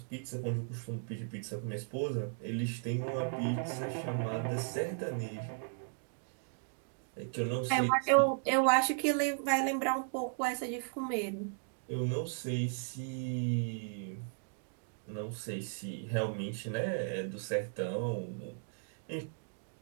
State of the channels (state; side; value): silent; left; digital silence